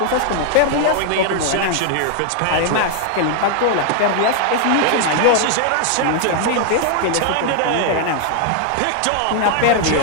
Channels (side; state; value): both; different; correlation 0.00